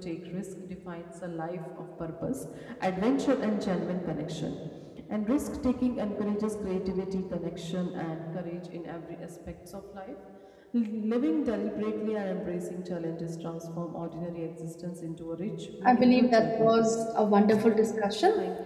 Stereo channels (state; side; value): identical; both; correlation 1.00